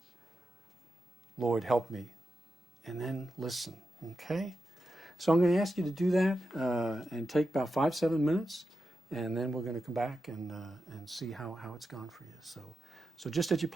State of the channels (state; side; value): normal; both; correlation 0.89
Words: Lord, help me. And then listen, okay? So I'm going to ask you to do that and take about 5-7 minutes, and then we're going to come back and see how it's gone for you. So just at your